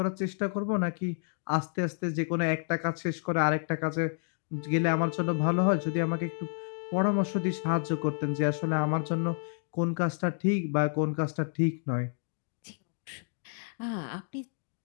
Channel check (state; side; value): silent; right; 58 dB below the other